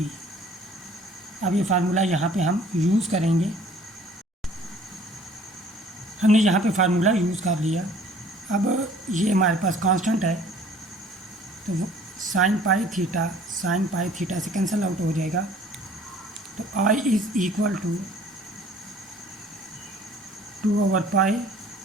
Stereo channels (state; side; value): normal; both; correlation 0.53